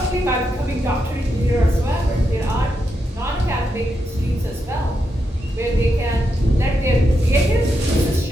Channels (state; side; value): normal; both; correlation 0.84